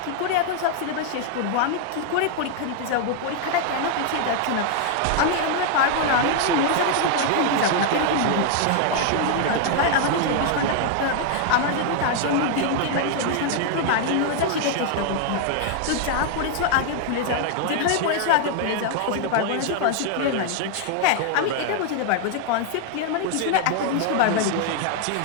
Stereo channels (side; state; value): both; different; correlation 0.00